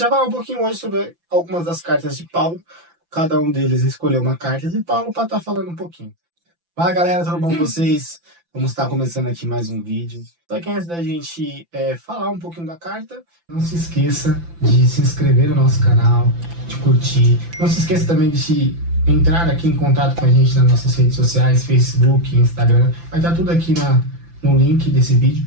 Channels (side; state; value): left; late; 5.9 ms